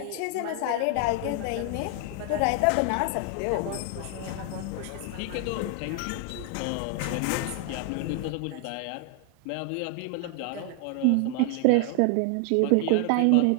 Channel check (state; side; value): different; both; correlation 0.00